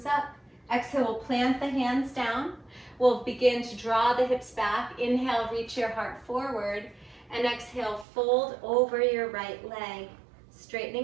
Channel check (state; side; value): drops out; left; at 8.1 s